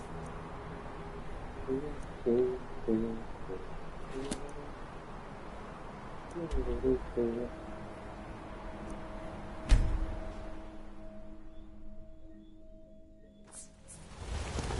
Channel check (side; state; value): both; identical; correlation 1.00